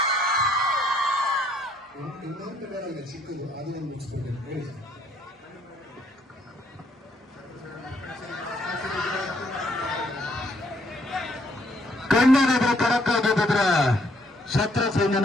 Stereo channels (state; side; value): normal; both; correlation 0.68